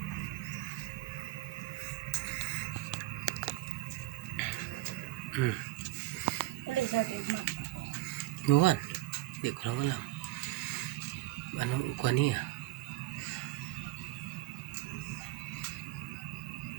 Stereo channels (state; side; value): quieter; left; 17.2 dB